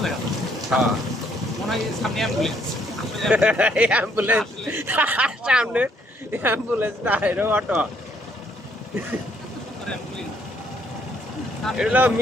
দেখা হ্যাঁ মনে হয় সামনে অ্যাম্বুলেন্স অ্যাম্বুলেন্স সামনে অ্যাম্বুলেন্স না এটা অটো, এটা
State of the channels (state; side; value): normal; both; correlation 0.68